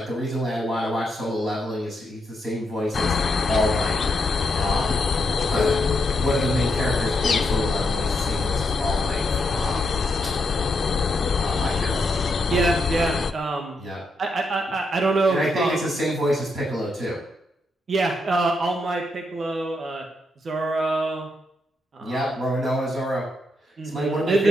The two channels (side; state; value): both; normal; correlation 0.79